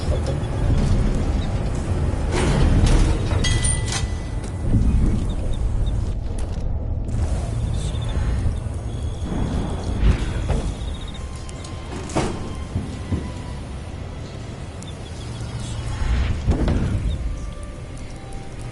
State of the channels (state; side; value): identical; both; correlation 1.00